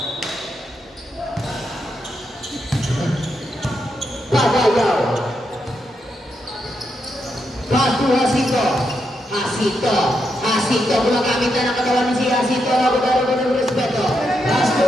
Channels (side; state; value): both; normal; correlation 0.82